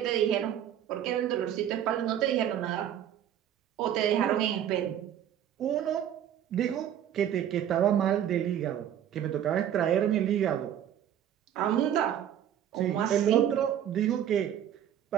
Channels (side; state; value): left; quieter; 10.3 dB